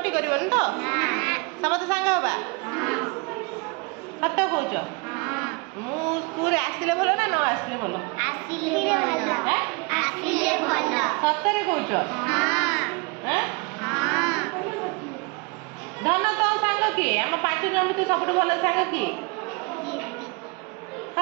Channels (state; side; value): quieter; left; 30.0 dB